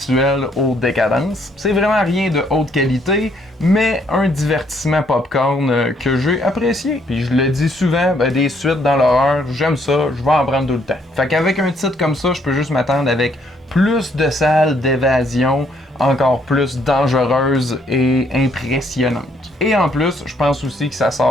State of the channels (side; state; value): both; normal; correlation 0.69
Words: aux décadences. C'est vraiment rien de haute qualité, mais un divertissement popcorn que j'ai apprécié. Puis je le dis souvent, ben, des suites dans l'horreur, j'aime ça, je vais en prendre tout le temps. Fait qu'avec un titre comme ça, je peux juste m'attendre avec plus de salles d'évasion, encore plus dangereuses et impressionnantes. Et en plus, je pense aussi que ça